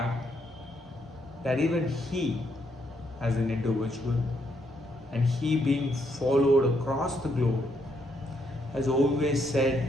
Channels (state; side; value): normal; both; correlation 0.75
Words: that even he, as an individual, and he being followed across the globe, has always